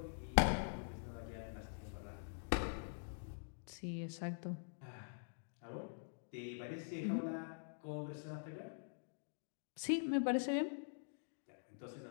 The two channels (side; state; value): right; silent; digital silence